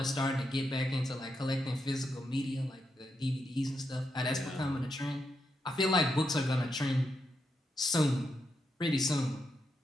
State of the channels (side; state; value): both; normal; correlation 0.83